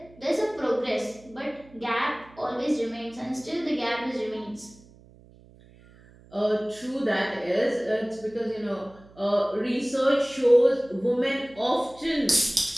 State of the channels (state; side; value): noise; right; hum, 25 dB below the sound